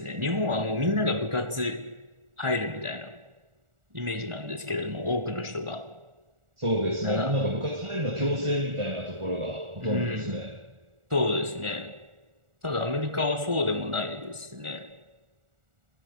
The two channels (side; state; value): left; late; 1.4 ms